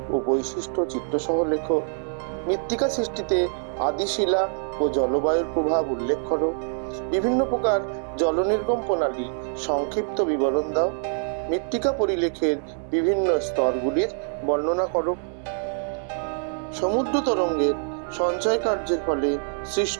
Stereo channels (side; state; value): left; silent; 61 dB below the other